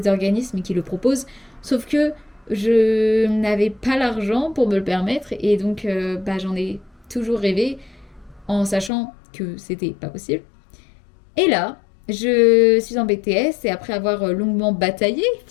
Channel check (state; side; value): drops out; right; at 8.9 s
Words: organismes qui le proposent, sauf que je n'avais pas l'argent pour me le permettre et donc j'en ai toujours rêvé en sachant que c'était pas possible. Et là, je suis en BTS et après avoir longuement bataillé